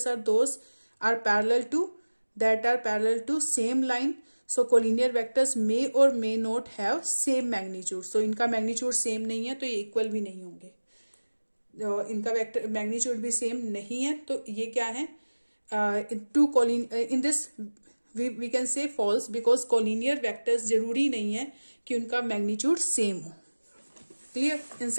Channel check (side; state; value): both; inverted; correlation -1.00